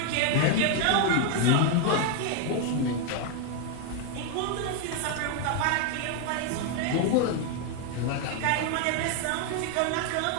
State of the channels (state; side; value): different; both; correlation 0.01